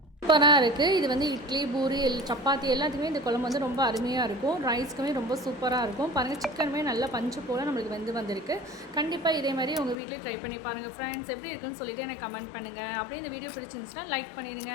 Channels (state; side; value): drops out; right; at 10.0 s